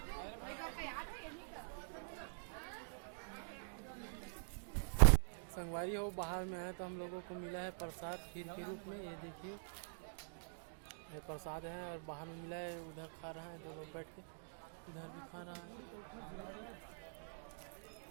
संगवारी हो बाहर में है तो हम लोगों को मिला है प्रसाद खीर के रूप में। ये देखिए ये प्रसाद है और बाहर में मिला है। उधर खा रहा है दो लोग बैठ के, इधर भी खा रहा है,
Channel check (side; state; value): left; silent; digital silence